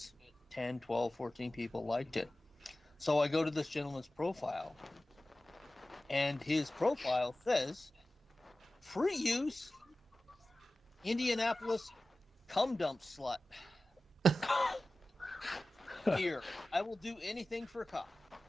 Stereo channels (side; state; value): both; normal; correlation 0.96